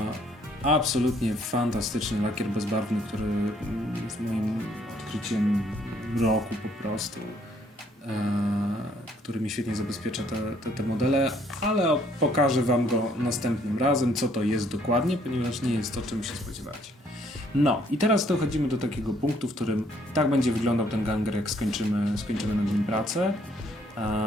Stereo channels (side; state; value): both; normal; correlation 0.66